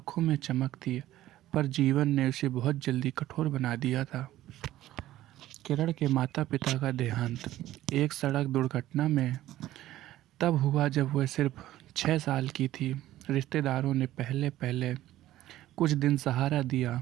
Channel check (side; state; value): left; quieter; 14.5 dB